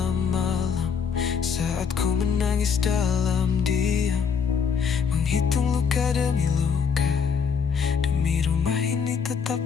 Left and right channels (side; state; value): right; quieter; 6.4 dB